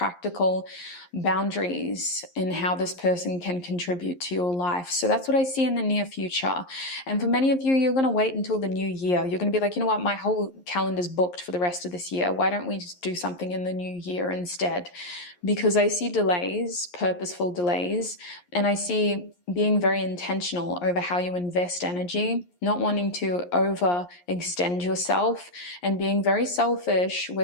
boundaries in how this person can contribute to your life. So that's what I see in the near future. And for many of you, you're going to wait until the new year. You're going to be like, you know what, my whole calendar's booked for the rest of this year. Why don't we just do something in the new year instead? Because I see delays, purposeful delays, and I see being very intentional over how you invest energy, not wanting to overextend yourself, and being very selfish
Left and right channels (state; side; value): late; right; 11 ms